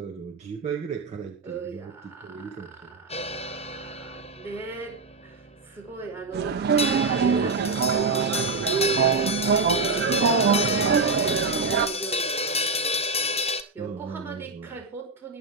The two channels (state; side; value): quieter; left; 3.6 dB